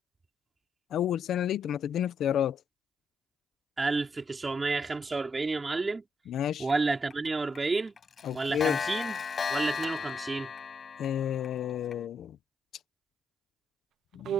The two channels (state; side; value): normal; both; correlation 0.78